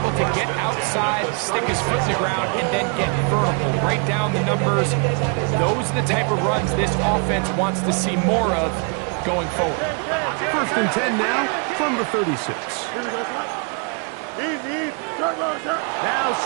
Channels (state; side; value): quieter; left; 37.1 dB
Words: to get outside, stick his foot to the ground, and then get vertical. Right down the numbers. Those are the type of runs this offense wants to see more of going forward. 1st and 10 now from the 36. Here we go, son. Easy. Turbo, sir. Now